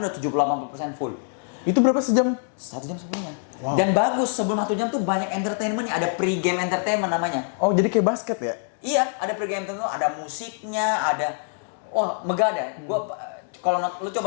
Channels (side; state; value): right; silent; digital silence